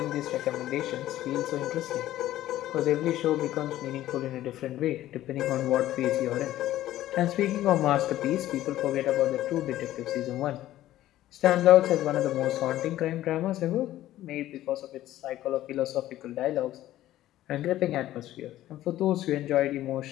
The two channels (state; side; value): quieter; right; 14.1 dB